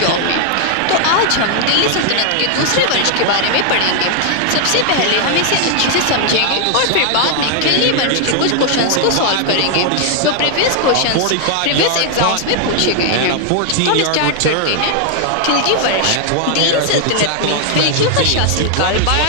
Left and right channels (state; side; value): different; both; correlation 0.00